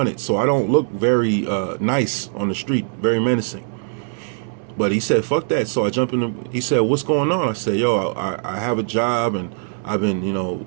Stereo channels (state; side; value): silent; left; 65 dB below the other